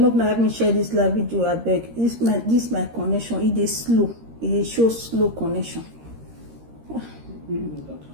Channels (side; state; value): left; late; 13 ms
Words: let me share this live video. I beg. This my connection. It is slow. It shows slow connection.